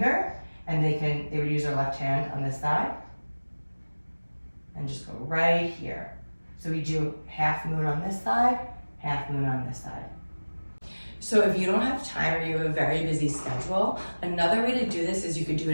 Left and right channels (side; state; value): both; inverted; correlation -1.00